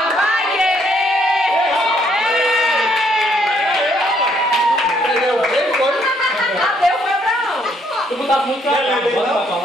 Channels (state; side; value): normal; both; correlation 0.69